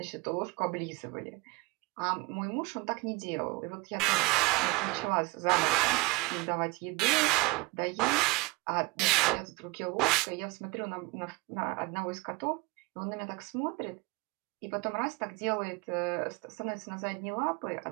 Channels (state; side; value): quieter; left; 25.0 dB